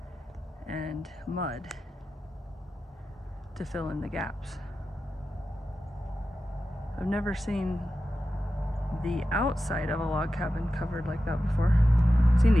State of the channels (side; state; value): both; normal; correlation 0.92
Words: and mud to fill in the gaps. I've never seen the outside of a log cabin covered like that before. I've seen